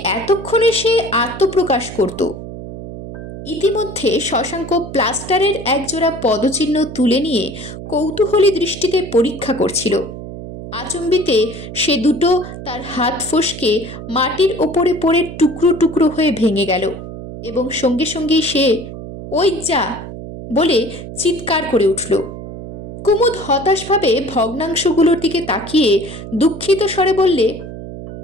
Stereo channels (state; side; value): noise; right; hum, 11 dB below the sound